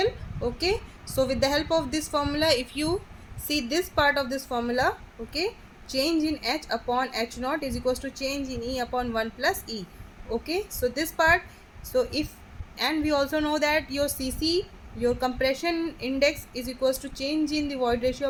Okay, so with the help of this formula, if you see this part of this formula, okay, change in H upon H naught is equals to change in E upon 1 plus E. Okay, so this part, so if, and we also know that your CC, your compression index, is equals to change in the void ratio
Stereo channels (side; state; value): both; identical; correlation 1.00